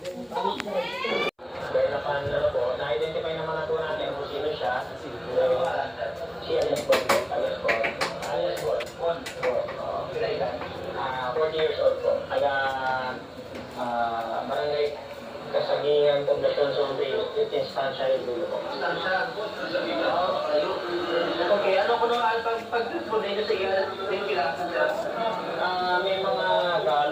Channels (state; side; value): identical; both; correlation 1.00